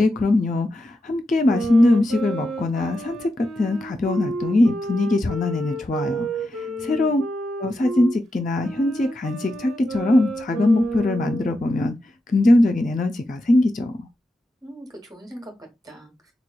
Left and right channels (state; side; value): normal; both; correlation 0.87